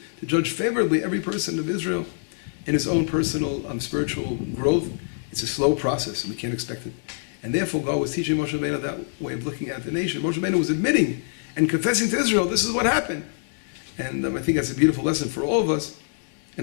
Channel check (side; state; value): right; silent; 58 dB below the other